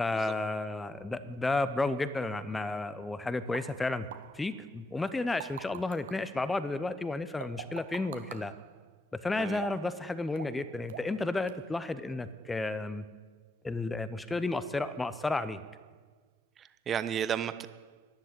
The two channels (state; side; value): normal; both; correlation 0.82